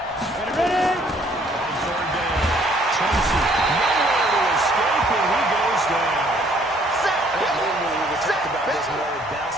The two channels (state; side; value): normal; both; correlation 0.62